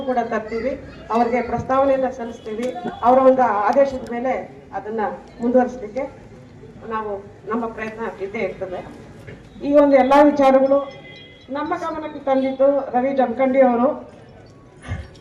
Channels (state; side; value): identical; both; correlation 1.00